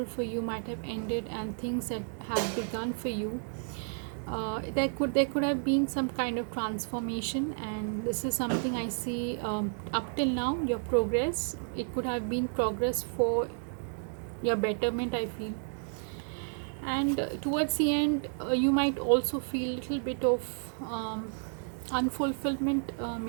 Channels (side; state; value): left; silent; 57 dB below the other